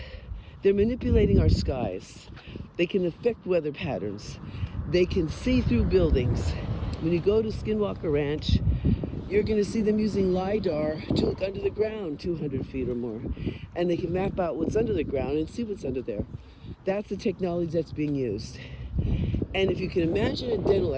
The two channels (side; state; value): both; identical; correlation 1.00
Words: they're manipulating our skies. They can affect weather patterns. They can see through buildings. When you go to Skinwalker Ranch, you're going to see them using Lidar to look under the ground 200 feet or more. And they can map out what's under the ground and see what's under there. That's the technology that's being used. And if you can imagine a dental